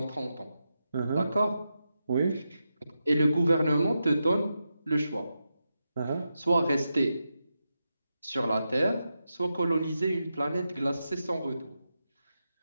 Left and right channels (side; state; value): both; inverted; correlation -0.88